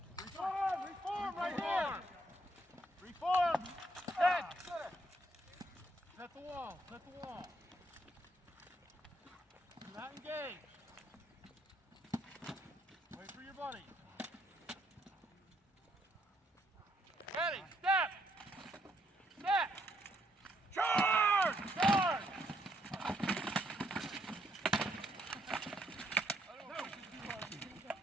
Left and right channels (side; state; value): both; normal; correlation 0.73